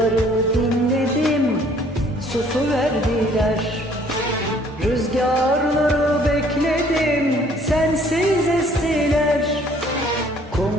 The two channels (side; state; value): both; normal; correlation 0.59